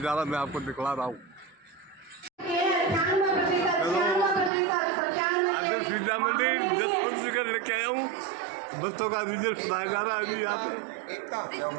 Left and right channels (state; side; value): drops out; left; at 4.5 s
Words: मैं आपको दिखला रहा हूँ। आदर्श विद्या मंदिर 10 लेके आया हूँ। बच्चों का रिजल्ट सुनाया जा रहा है। अभी यहाँ पे